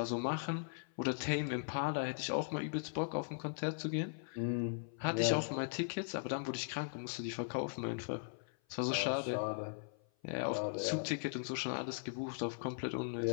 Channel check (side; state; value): right; silent; 52 dB below the other